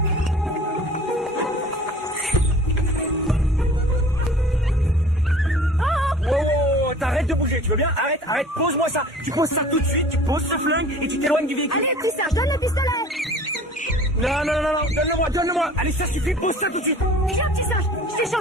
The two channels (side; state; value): both; normal; correlation 0.46